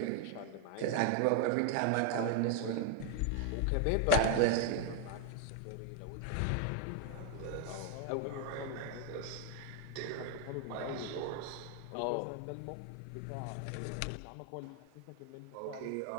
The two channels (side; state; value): both; different; correlation 0.01